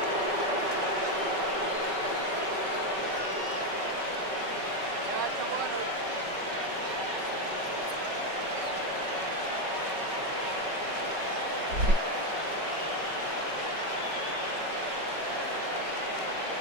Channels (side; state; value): left; late; 5.2 ms